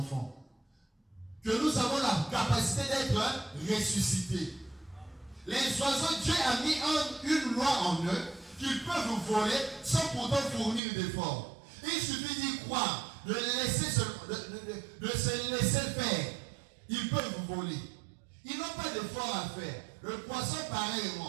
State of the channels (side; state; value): left; drops out; at 10.8 s